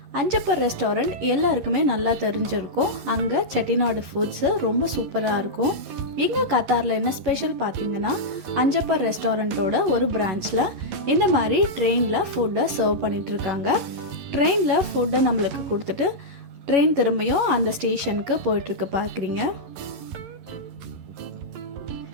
அஞ்சப்பர் ரெஸ்டாரண்ட் எல்லாருக்குமே நல்லா தெரிஞ்சிருக்கும். அங்கே செட்டிநாடு ஃபுட்ஸு ரொம்ப சூப்பராக இருக்கும். இங்கே கத்தாரில் என்ன ஸ்பெஷல் பார்த்தீங்கன்னா, அஞ்சப்பர் ரெஸ்டாரண்ட்டோட ஒரு பிரான்ச்சில் இந்த மாதிரி ட்ரெயினில் ஃபுட்டை சர்வ் பண்ணிகிட்ருக்காங்க. ட்ரெயினில் ஃபுட்டை நம்மளுக்கு கொடுத்துட்டு ட்ரெயின் திரும்பியும் அந்த ஸ்டேஷனுக்கு போயிட்டுருக்கு பார்க்குறீங்க.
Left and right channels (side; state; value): left; late; 11 ms